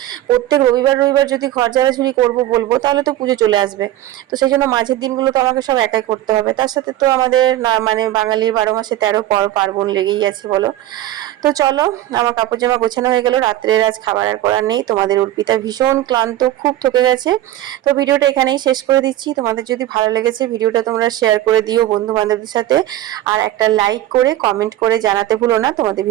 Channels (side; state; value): left; quieter; 14.1 dB